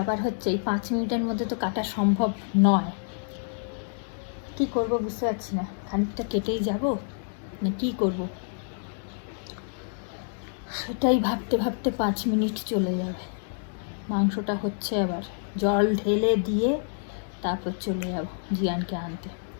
হচ্ছে এই 5 মিনিটের মধ্যে তো কাটা সম্ভব নয়। কি করব বুঝতে পারছি না, খানিকটা কেটেই যাব না কি করব, সেটাই ভাবতে ভাবতে 5 মিনিট চলে যাবে। মাংসটা হচ্ছে, আবার জল ঢেলে দিয়ে তারপর চলে যাব জিয়ানকে আনতে।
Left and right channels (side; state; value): right; silent; digital silence